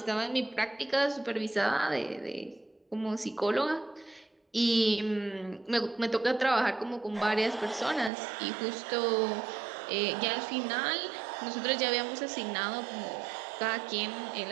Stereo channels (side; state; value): left; drops out; at 8.1 s